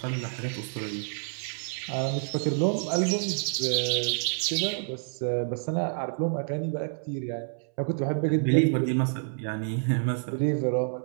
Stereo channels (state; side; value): silent; left; 59 dB below the other